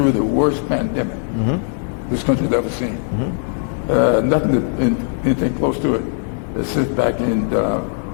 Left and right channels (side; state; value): right; silent; 66 dB below the other